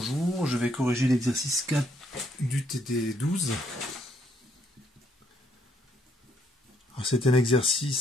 je vais corriger l'exercice 4 du TD12. C'est un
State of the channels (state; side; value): normal; both; correlation 0.70